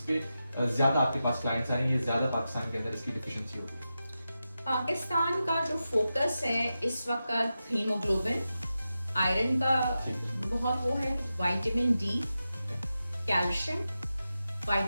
पे ज्यादा आपके पास क्लाइंट्स आएंगे, ज्यादा पाकिस्तान के अंदर इसकी डिफिशियंसी होगी। पाकिस्तान का जो फोकस है इस वक्त हीमोग्लोबिन, आयरन का बहुत वो है, vitamin D, calcium,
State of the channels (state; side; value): inverted; both; correlation -0.91